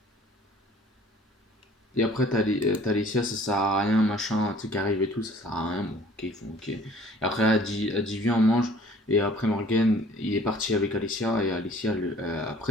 Et après t'as Alicia, ça sert à rien, machin, tu sais, qui arrive et tout, ça sert à rien, bon ok, ils font ok. Et après elle dit viens on mange, et après Morgan il est parti avec Alicia, et Alicia,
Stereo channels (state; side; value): normal; both; correlation 0.53